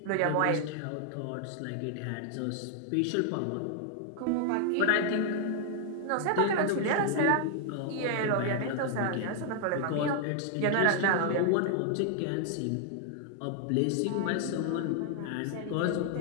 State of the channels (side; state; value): both; different; correlation 0.00